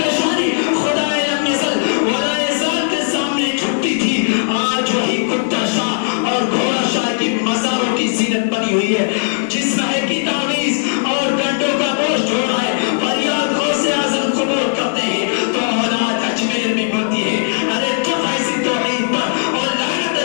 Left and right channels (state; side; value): silent; right; digital silence